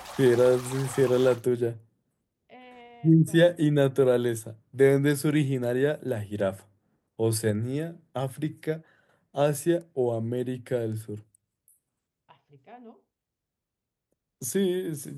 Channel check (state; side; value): identical; both; correlation 1.00